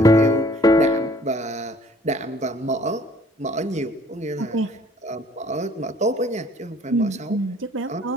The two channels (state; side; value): normal; both; correlation 0.57